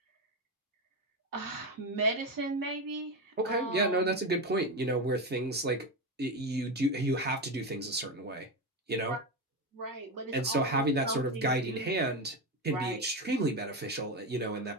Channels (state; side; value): normal; both; correlation 0.15